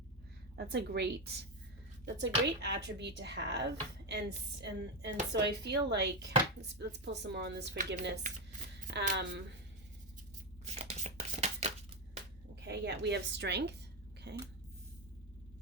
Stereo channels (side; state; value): both; normal; correlation 0.09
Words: That's a great attribute to have, and so I feel like let's pull some more on this forgiveness. Okay, yeah, we have strength. Okay.